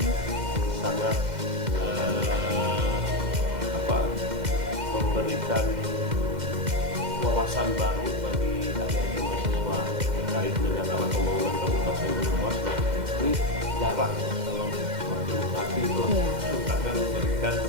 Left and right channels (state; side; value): late; left; 2.1 ms